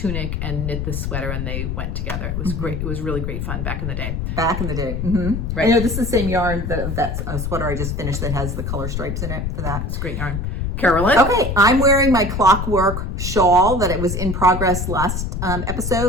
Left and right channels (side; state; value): left; noise; rumble, 3 dB below the sound